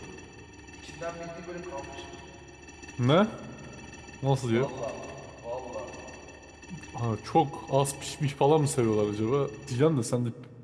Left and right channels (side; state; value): both; identical; correlation 1.00